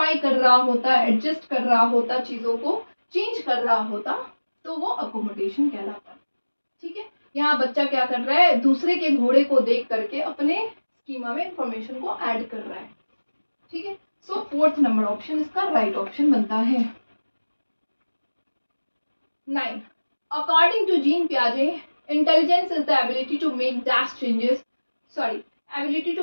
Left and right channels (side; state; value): both; inverted; correlation -1.00